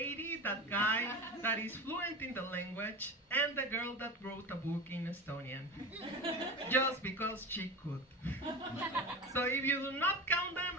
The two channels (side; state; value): both; normal; correlation 0.28